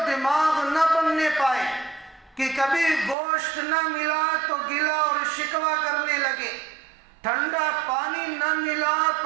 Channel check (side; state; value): left; drops out; at 3.2 s